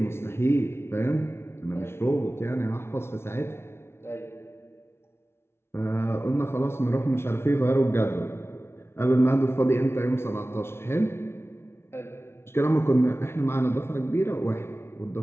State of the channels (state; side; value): late; right; 0.12 ms